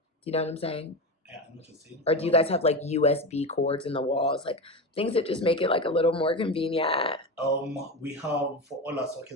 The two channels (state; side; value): normal; both; correlation 0.21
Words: do you know what I'm saying? I know what you're saying. Or do you guys have like USB cords in the walls, like things that just make it like a little more convenient? We have, for all our